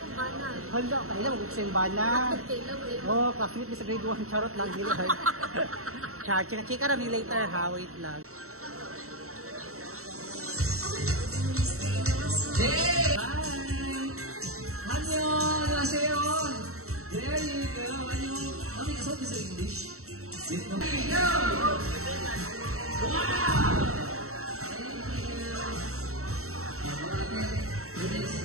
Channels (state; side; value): late; left; 0.64 ms